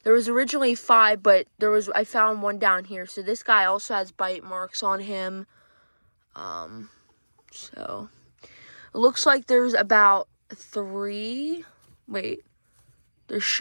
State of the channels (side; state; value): both; inverted; correlation -1.00